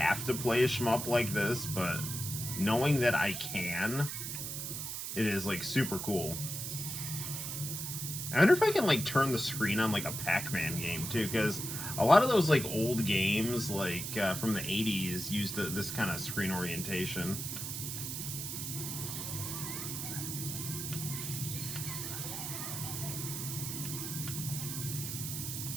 to play a shmup like this, but knowing that I can, it is, like, super cool. I wonder if I can, like, turn the screen on, like, a Pac-Man game, too, because a lot of those, like, old games, like, from the 80s used this kind of screen orientation.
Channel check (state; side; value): noise; right; hiss, 5 dB below the sound